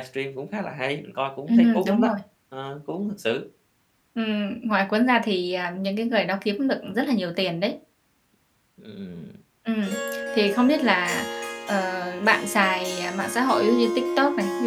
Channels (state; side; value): identical; both; correlation 1.00